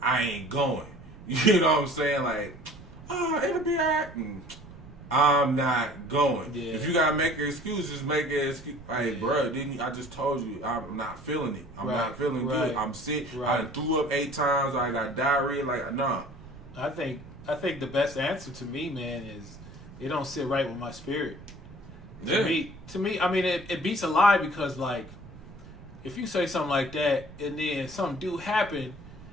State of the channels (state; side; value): noise; right; rumble, 20 dB below the sound